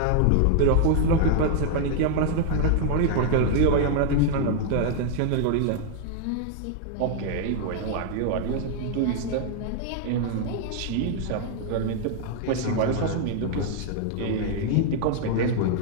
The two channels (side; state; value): both; different; correlation 0.00